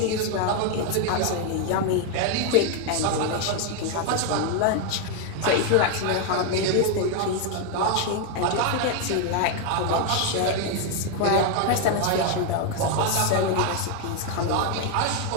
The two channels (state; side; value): different; both; correlation 0.01